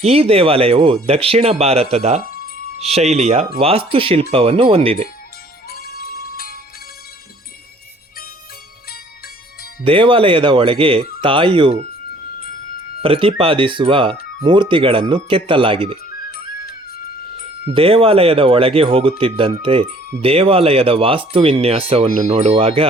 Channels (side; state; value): both; normal; correlation 0.56